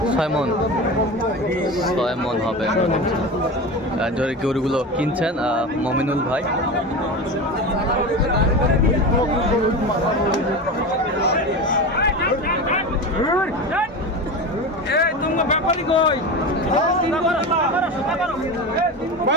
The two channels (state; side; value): normal; both; correlation 0.26